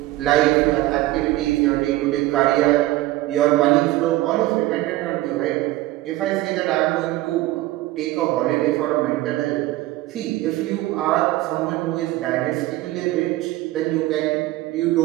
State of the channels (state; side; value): quieter; left; 17.2 dB